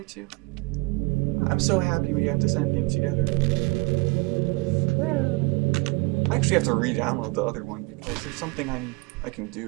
too? I'm so happy we got this ending together. I actually have to re-download the other one because there's something I can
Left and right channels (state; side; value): quieter; left; 26.4 dB